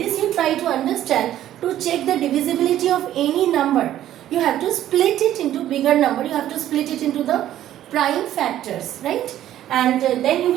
you try to understand. To check the divisibility of any number, you have to split it into bigger number. You have to split it into the prime factors, right? And then you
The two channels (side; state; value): left; quieter; 12.4 dB